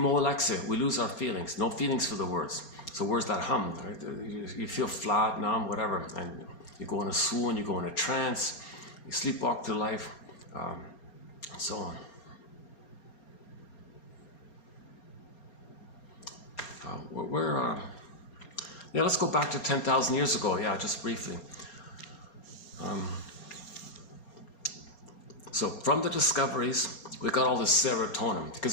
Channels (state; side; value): late; right; 4.3 ms